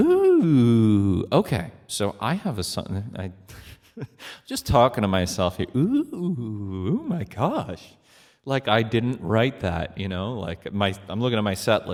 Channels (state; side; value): identical; both; correlation 1.00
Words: okay. So I have a song. I just talking to myself here. Ooh, oh my gosh! Like I didn't write that, Like I'm looking at my set